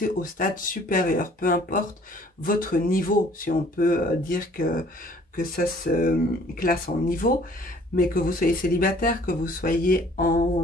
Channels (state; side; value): normal; both; correlation 0.56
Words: au stade supérieur, peu importe votre niveau, si on peut dire que ça se classe en niveau, mais que vous soyez célibataire, que vous soyez